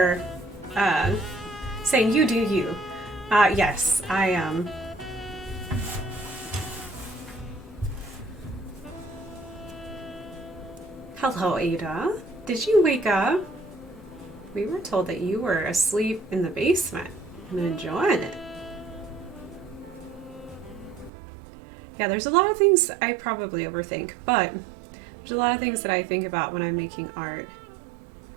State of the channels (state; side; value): drops out; left; at 21.1 s